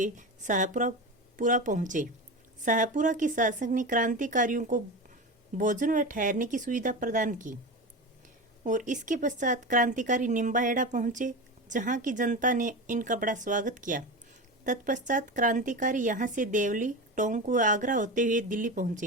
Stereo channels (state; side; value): normal; both; correlation 0.24